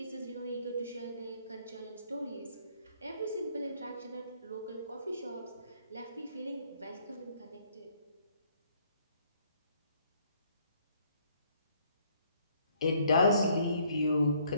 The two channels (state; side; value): inverted; both; correlation -0.65